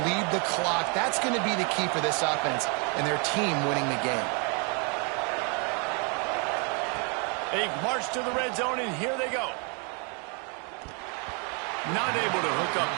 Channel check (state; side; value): quieter; left; 35.6 dB